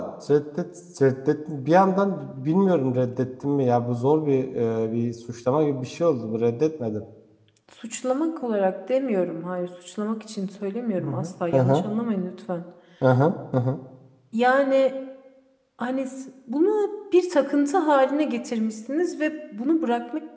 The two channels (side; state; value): both; identical; correlation 1.00